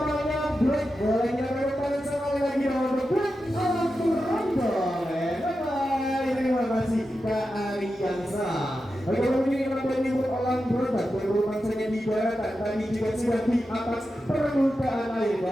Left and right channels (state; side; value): normal; both; correlation 0.90